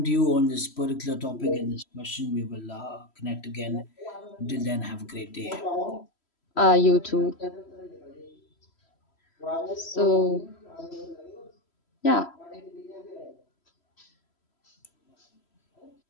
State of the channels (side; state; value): right; late; 3.0 ms